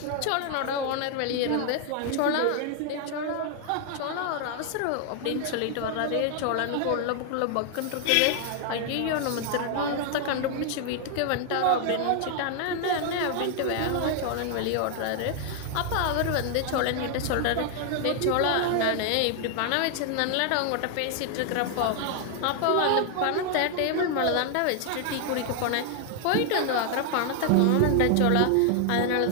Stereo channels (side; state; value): both; different; correlation 0.00